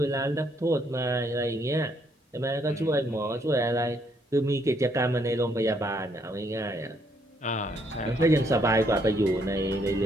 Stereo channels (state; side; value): normal; both; correlation 0.71